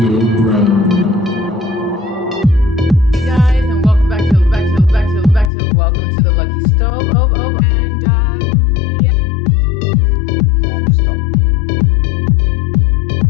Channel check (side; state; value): right; drops out; at 5.5 s